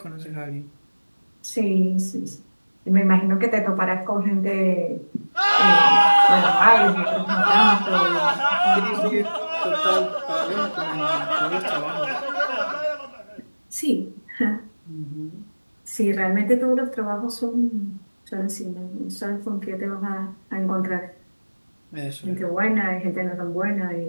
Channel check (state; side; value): inverted; both; correlation -1.00